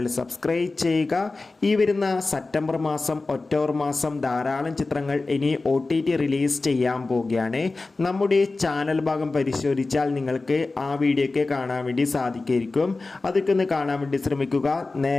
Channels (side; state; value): right; quieter; 3.5 dB